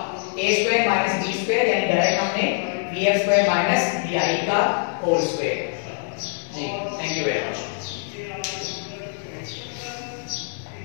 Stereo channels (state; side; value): silent; right; 63 dB below the other